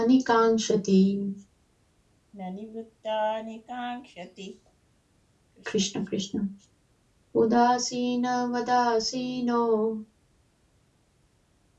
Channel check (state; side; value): identical; both; correlation 1.00